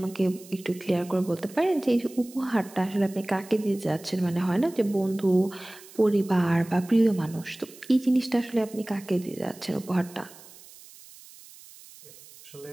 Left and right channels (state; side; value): noise; right; hiss, 20 dB below the sound